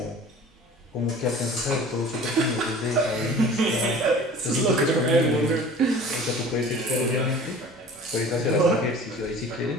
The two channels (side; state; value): both; normal; correlation 0.44